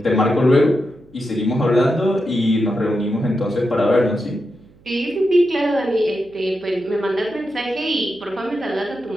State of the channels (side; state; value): right; noise; hum, 28 dB below the sound